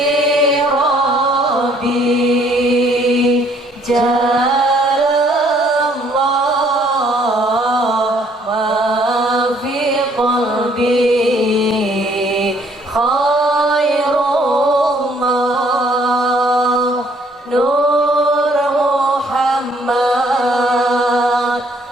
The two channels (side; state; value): both; normal; correlation 0.63